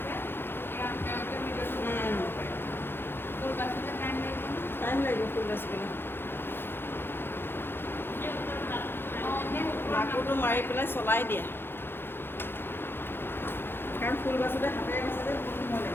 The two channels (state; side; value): late; right; 0.10 ms